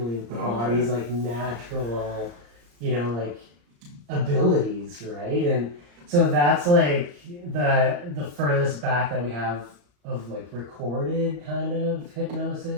with the body's like natural like abilities, right? And so that's like the furthest back that we have of like recorded kind of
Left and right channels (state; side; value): late; left; 34 ms